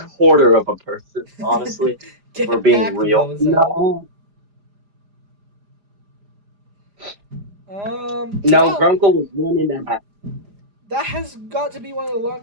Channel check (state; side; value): late; left; 4.9 ms